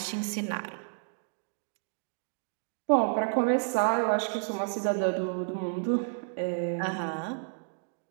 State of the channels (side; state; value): left; silent; digital silence